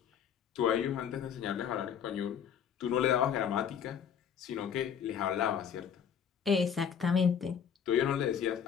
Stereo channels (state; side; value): quieter; right; 8.0 dB